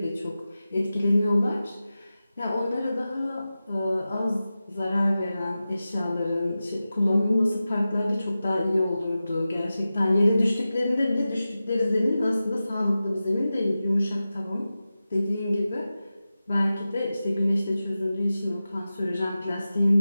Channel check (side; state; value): both; inverted; correlation -0.94